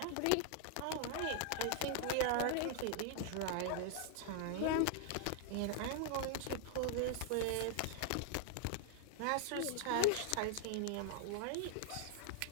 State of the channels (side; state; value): both; different; correlation 0.00